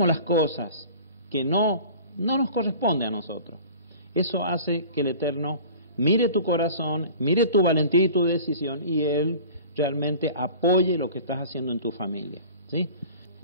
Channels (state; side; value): inverted; both; correlation -0.42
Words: las cosas que no nos corresponden a nosotros. Eso hace que el Eterno mire tu corazón, mire tu valentía y tu decisión, y Él realmente apoye lo que estás haciendo en tu familia, ¿sí?